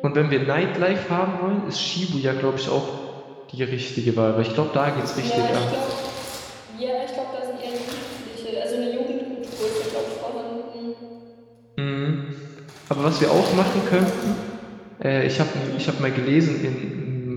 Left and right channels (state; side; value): identical; both; correlation 1.00